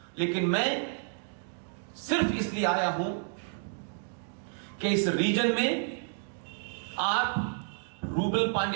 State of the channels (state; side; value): silent; left; 57 dB below the other